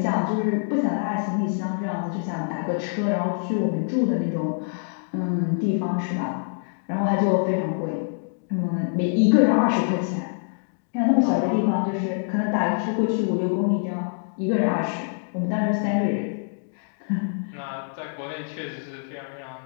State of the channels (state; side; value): silent; right; digital silence